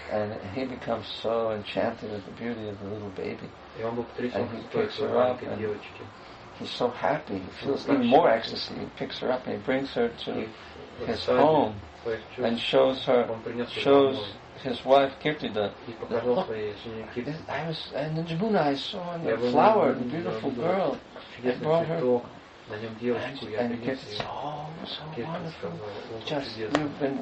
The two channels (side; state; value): both; identical; correlation 1.00